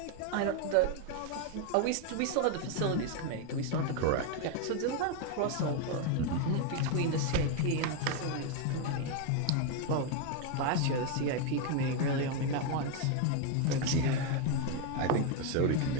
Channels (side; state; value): both; different; correlation 0.01